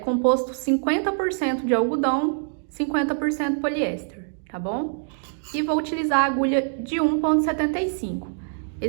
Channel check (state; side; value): silent; left; digital silence